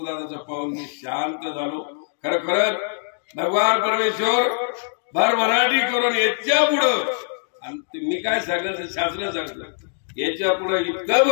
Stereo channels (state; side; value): silent; right; digital silence